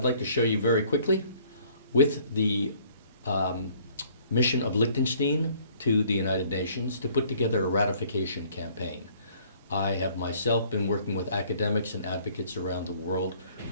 like to show you very quickly, with the mission of Liechtenstein to the United Nations to put together a ratification campaign. I have myself been working with academics and advocates around the world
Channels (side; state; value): both; inverted; correlation -0.59